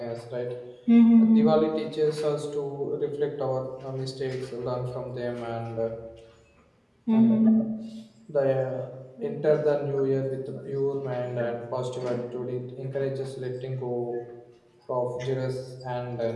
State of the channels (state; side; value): identical; both; correlation 1.00